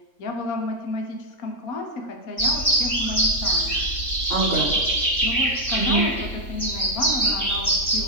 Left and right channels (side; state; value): right; late; 3.5 ms